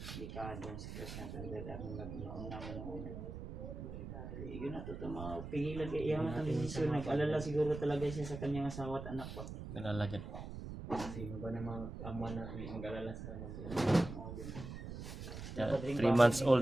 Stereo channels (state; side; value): noise; right; rumble, 8 dB below the sound